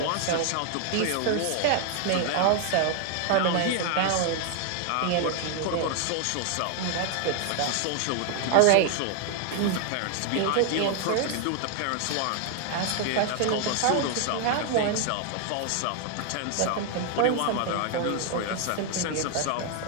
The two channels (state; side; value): different; both; correlation 0.00